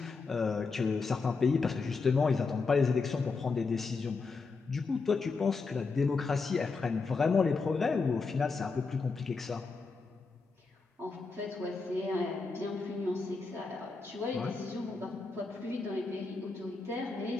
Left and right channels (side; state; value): right; quieter; 4.3 dB